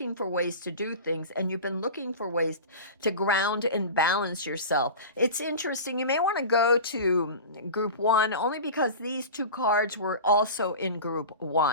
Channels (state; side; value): inverted; both; correlation -0.32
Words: for ways to do things, and you've been looking for ways to ground and balance yourself. It's interesting, you may want to go to group 1 only because these 2 cards were also in group